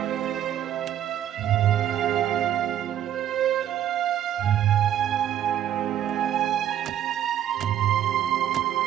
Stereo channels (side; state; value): left; quieter; 11.0 dB